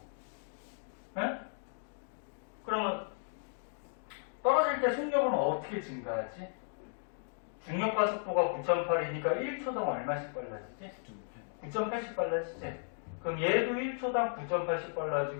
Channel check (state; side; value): silent; right; digital silence